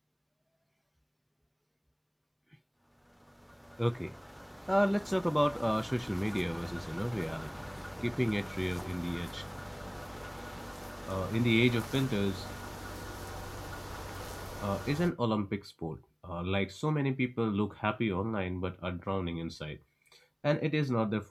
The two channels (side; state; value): both; identical; correlation 1.00